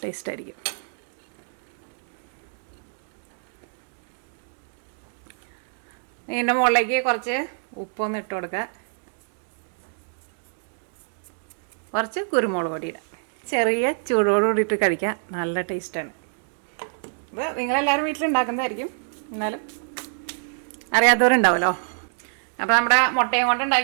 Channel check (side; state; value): left; silent; digital silence